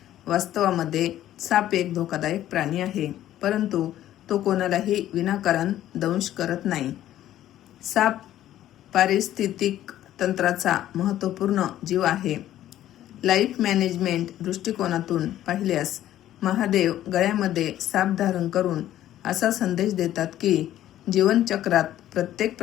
वास्तवामध्ये साप एक धोकादायक प्राणी आहे, परंतु तो कोणालाही विनाकारण दंश करत नाही. साप पारिस्थितिक तंत्राचा महत्त्वपूर्ण जीव आहे. लाईफ मॅनेजमेंट दृष्टिकोनातून पाहिल्यास महादेव गळ्यामध्ये साप धारण करून असा संदेश देतात की जीवनचक्रात प्रत्येक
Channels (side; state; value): right; quieter; 12.7 dB